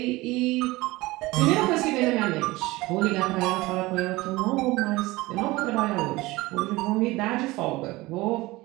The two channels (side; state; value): left; quieter; 20.4 dB